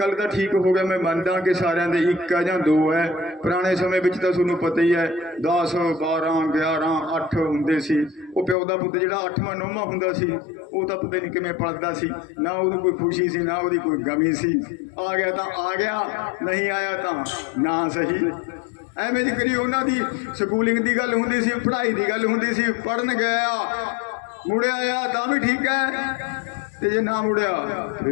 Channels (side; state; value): right; drops out; at 8.6 s